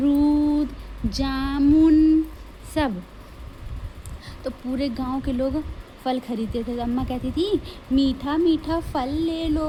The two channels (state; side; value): identical; both; correlation 1.00